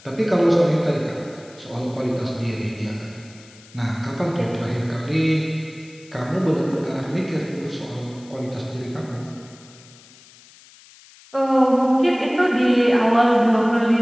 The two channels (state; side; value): noise; left; hiss, 24 dB below the sound